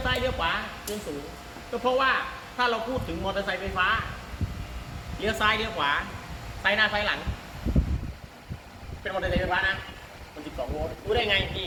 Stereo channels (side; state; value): both; identical; correlation 1.00